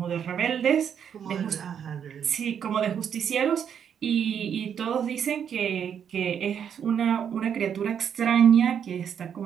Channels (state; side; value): quieter; left; 8.2 dB